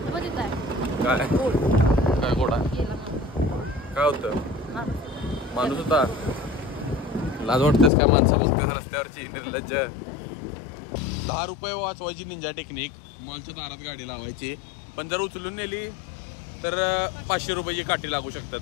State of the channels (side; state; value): right; drops out; at 7.9 s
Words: काय काय गोड आहे. काय होतं, माणूस होता. लाज वाटतेस काय माणसं बघतेस रस्त्यावरची निर्लज्ज. 10 रुपये वाचवायची निंजा टेक्निक. मॉलच्या दारात गाडी लावायची, पण जर उचलून नेली तर 500 रुपयाची काठी लागू